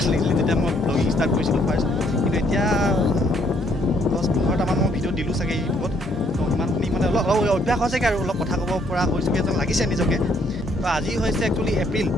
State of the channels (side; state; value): both; normal; correlation 0.67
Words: লাগিছিলে যেতিয়া মই ব্লগিং ষ্টাৰ্ট কৰিছিলোঁ ফাৰ্ষ্ট কিন্তু এতিয়া 10-15টামান মই ভিডিঅ' দিলোঁ চাগে ইউটিউবত তো ইমানখিনি মানে অলপ অভ্যাস হৈছেগৈ আৰু অলপ কথা ক'ব পৰা হৈছোগৈ যেন লাগিছে নিজকে তো আজি হৈছে একচুৱেলি